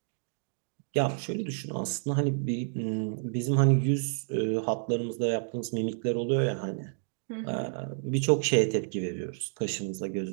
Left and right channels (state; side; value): silent; left; digital silence